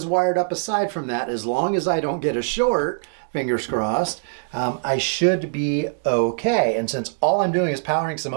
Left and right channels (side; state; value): left; silent; digital silence